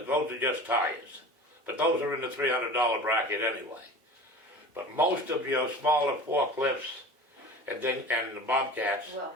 are just tires. But those are in the $300 bracket anyway. But most of your smaller forklifts and the Bobcats Will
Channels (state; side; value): normal; both; correlation 0.38